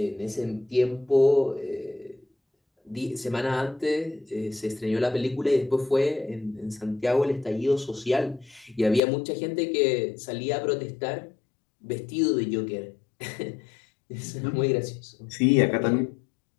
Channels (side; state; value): right; drops out; at 9.0 s